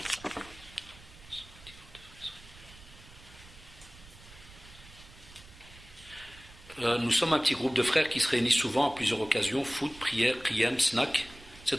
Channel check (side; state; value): right; noise; rumble, 20 dB below the sound